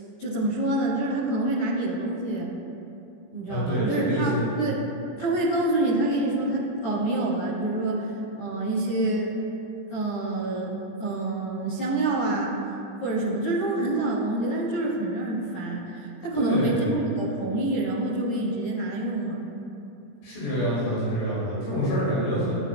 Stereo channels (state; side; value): late; right; 19 ms